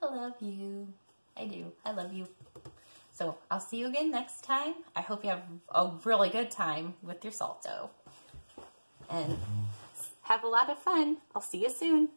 I love you. I do. I love you. So I'll see you again next time. I hope you have a really good time with your salt dough. And have a lot of fun. I'll see you soon.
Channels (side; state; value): both; inverted; correlation -1.00